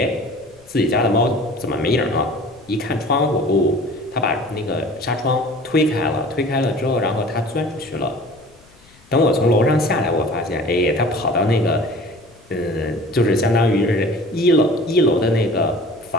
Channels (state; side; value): noise; left; rumble, 29 dB below the sound